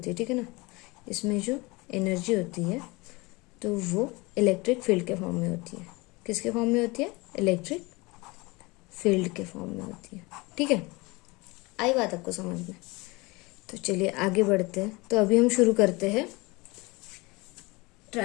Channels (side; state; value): right; quieter; 24.5 dB